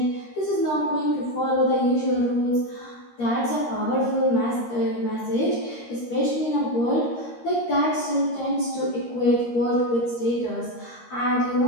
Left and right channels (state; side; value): late; right; 13 ms